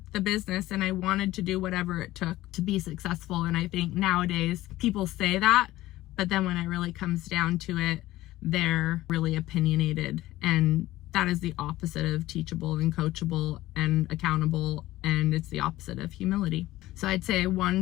the business and I wanted to do whatever it took to be successful. And I think nowadays people say that, but then when it really comes down to it, they're really opinionated. And that is the opposite of teachable and coachable and accountable. And it's the opposite of humility. So I'd say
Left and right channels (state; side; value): quieter; right; 16.4 dB